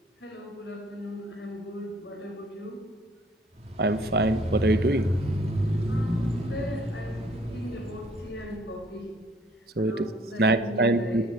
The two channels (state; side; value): normal; both; correlation 0.58